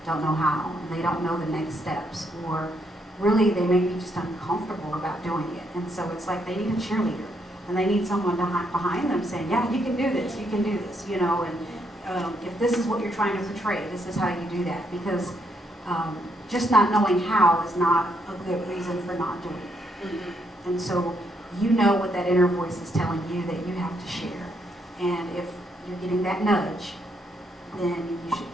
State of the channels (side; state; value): both; normal; correlation 0.75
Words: don't know how, and they don't know the next steps, or really they may be just uncomfortable about doing it. And so it's like they need a cheerleader, and they need someone behind them saying, yeah, you can do this, and if this is what you're trying to portray, this is how you do that, because just not knowing how is not a good reason for not doing it. And so you know what that inner voice is telling you that you have to share, and if you're getting that nudge, then you should.